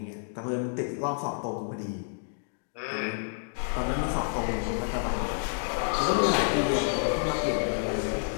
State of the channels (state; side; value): silent; right; digital silence